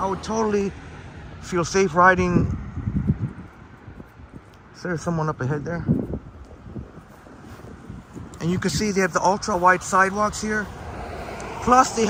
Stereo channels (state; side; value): identical; both; correlation 1.00